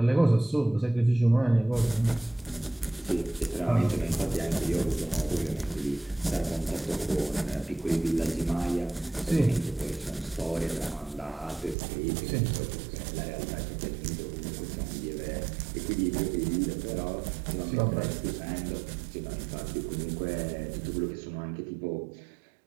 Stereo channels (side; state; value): left; drops out; at 11.8 s